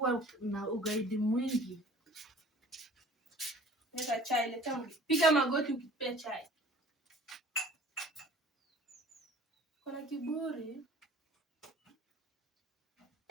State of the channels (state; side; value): normal; both; correlation 0.49